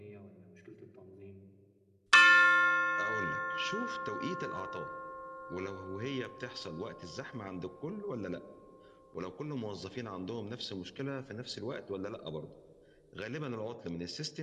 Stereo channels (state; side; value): identical; both; correlation 1.00